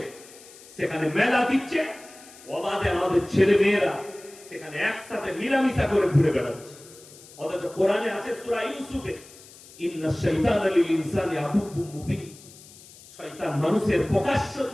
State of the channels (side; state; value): left; noise; hiss, 21 dB below the sound